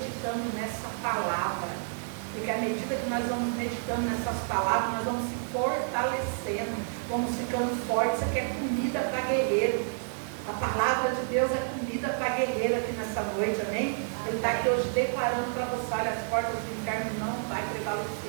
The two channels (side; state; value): left; silent; digital silence